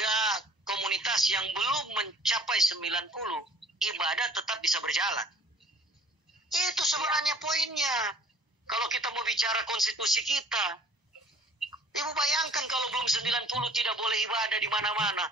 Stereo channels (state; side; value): late; left; 1.0 ms